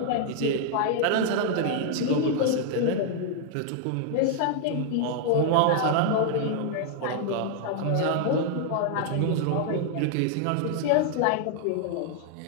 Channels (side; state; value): both; different; correlation 0.00